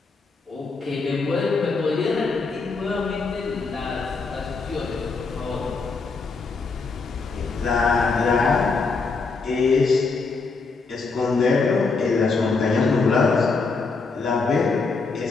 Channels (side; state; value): right; quieter; 4.3 dB